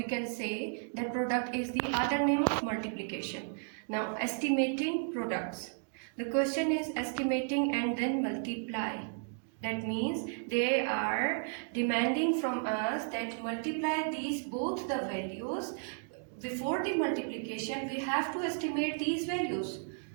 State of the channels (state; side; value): silent; left; 55 dB below the other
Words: can say that product is the other name of multiplication. Now estimating products. The question is estimating and then multiply. That means they are demanding from us that multiply these both the values. Before the multiplication, we have to estimate these values.